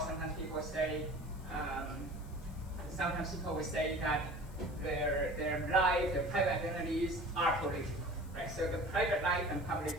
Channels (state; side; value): noise; left; hiss, 24 dB below the sound